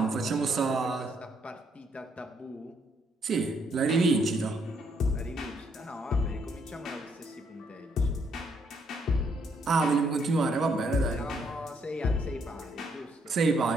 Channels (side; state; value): both; normal; correlation 0.72